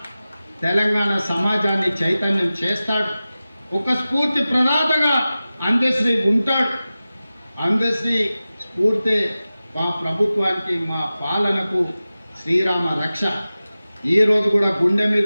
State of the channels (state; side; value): inverted; both; correlation -0.96